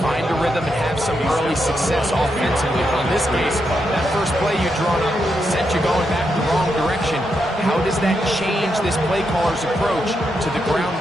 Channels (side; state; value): both; normal; correlation 0.83